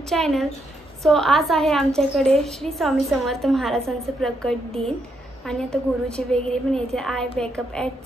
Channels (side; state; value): both; normal; correlation 0.78